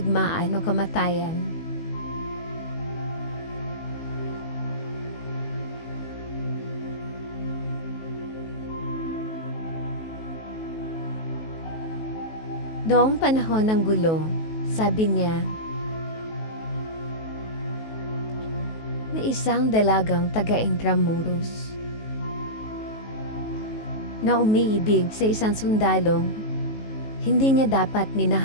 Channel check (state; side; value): late; right; 19 ms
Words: o kamatayan. Noong panahon ng gulo, sabi niya, may isang dalagang taga-Intramuros na umiibig sa isang sundalong hindi niya dapat